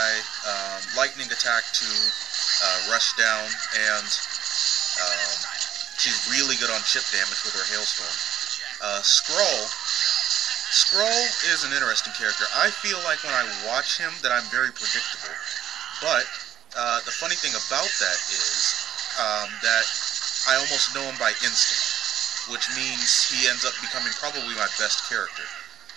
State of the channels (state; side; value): quieter; left; 11.2 dB